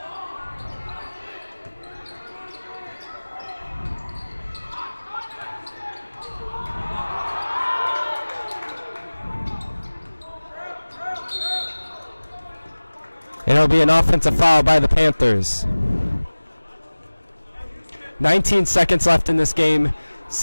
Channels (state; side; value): inverted; both; correlation -1.00